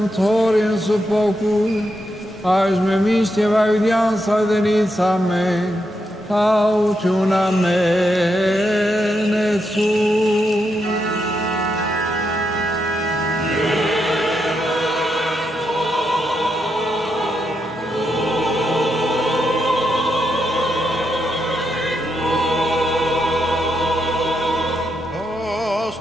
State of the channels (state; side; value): normal; both; correlation 0.82